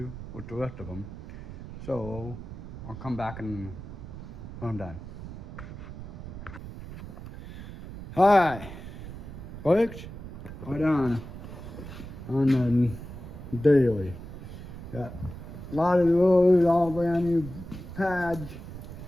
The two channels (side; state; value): right; noise; rumble, 11 dB below the sound